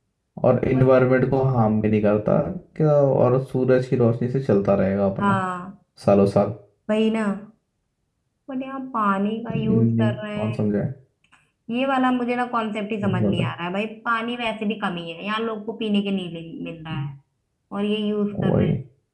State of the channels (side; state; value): both; identical; correlation 1.00